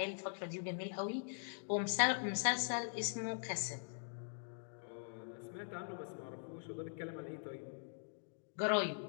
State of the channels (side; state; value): right; silent; digital silence